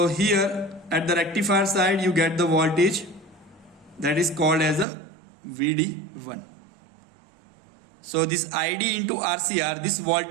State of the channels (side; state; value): left; drops out; at 4.9 s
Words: here at the rectifier side you get the voltage that is called as a VD1. So this ID into RCR, this